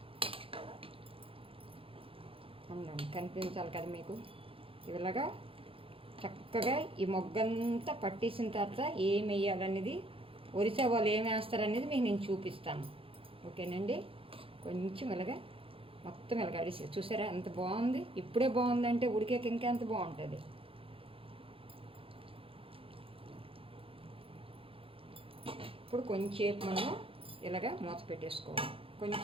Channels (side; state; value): left; late; 0.27 ms